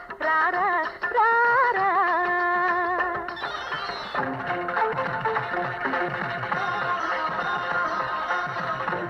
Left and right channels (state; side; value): identical; both; correlation 1.00